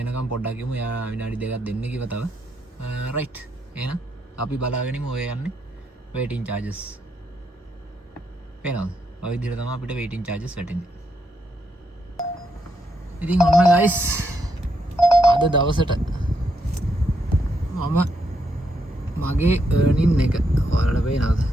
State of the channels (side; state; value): both; normal; correlation 0.79